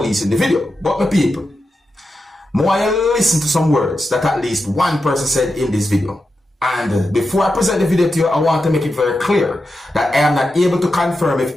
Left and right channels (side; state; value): both; normal; correlation 0.89